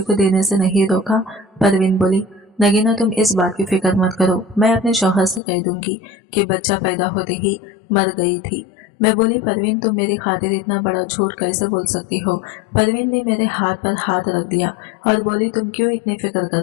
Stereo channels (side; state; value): right; drops out; at 5.4 s